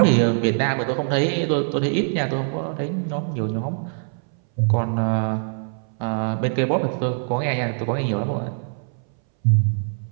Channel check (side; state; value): left; silent; 62 dB below the other